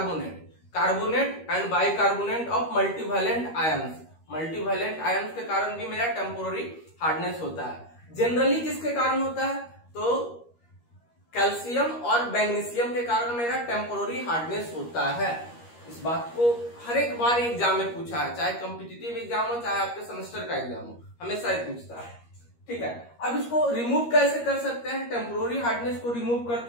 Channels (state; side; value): late; right; 13 ms